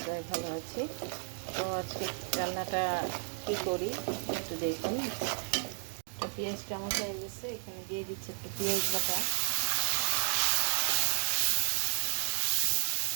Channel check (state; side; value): silent; left; 56 dB below the other